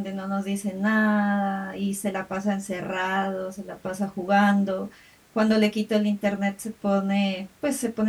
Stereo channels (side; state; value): both; identical; correlation 1.00